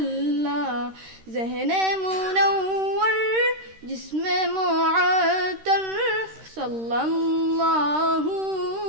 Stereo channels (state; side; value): late; left; 13 ms